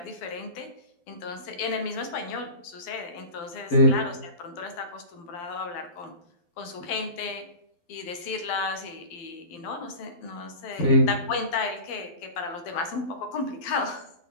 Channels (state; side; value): late; right; 12 ms